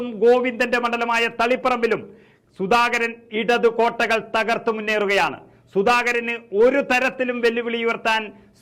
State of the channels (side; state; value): both; identical; correlation 1.00